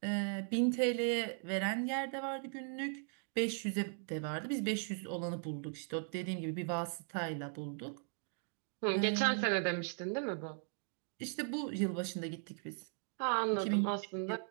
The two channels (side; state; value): left; silent; 52 dB below the other